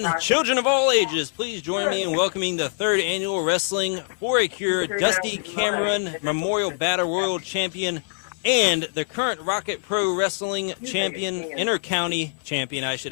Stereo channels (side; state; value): right; silent; 57 dB below the other